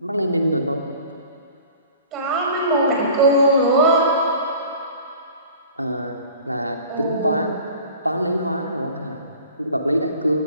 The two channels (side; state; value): both; inverted; correlation -0.45